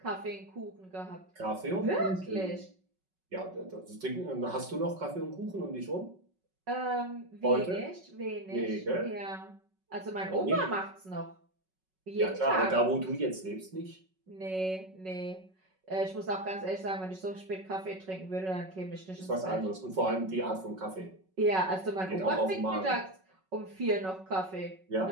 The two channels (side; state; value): left; late; 5.3 ms